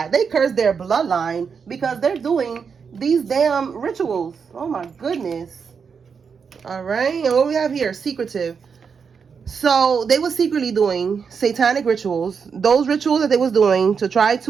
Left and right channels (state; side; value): quieter; left; 6.1 dB